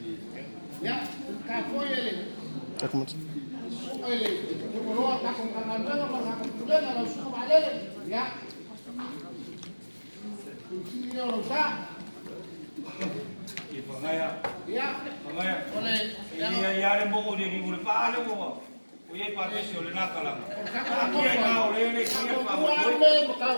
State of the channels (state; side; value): inverted; both; correlation -1.00